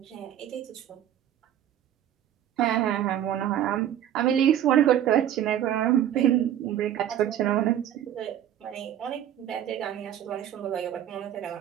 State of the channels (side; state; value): left; quieter; 10.9 dB